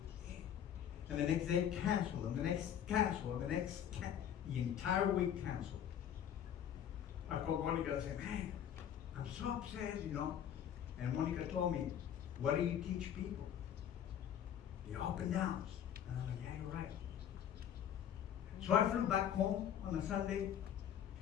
And the next day, cancel, and the next cancel, and the next the entire week cancel. I called Monica and I said, man, I'm so upset, you know. And Monica told me, what do you teach people? The up and downs. And I was like, yeah, you're right. So I flew back home on a Sunday.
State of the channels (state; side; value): quieter; right; 9.6 dB